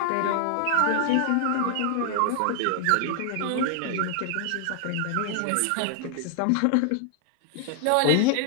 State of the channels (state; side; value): different; both; correlation 0.00